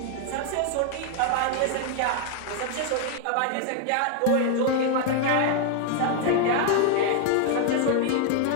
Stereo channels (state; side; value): different; both; correlation 0.00